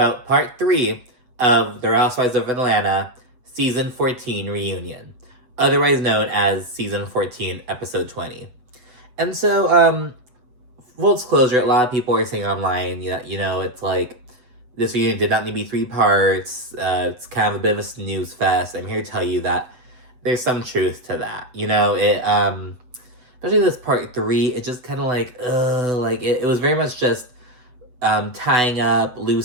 part 3 of The Housewives of Atlanta Season 14 Reunion, otherwise known as Season 14, Episode 20. And so, full disclosure, a lot of people are saying online, it's like, this reunion did not need to be 3 parts, it's kind of a bit of a snooze fest. I'm here to tell you that there's some truth to that. Especially this part 3, it just kind of it was very much just tying up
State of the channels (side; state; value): left; late; 8.0 ms